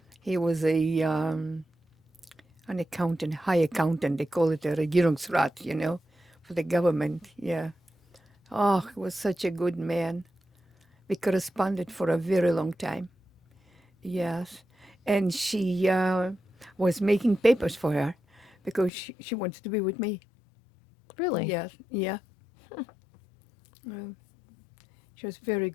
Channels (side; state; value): right; drops out; at 18.9 s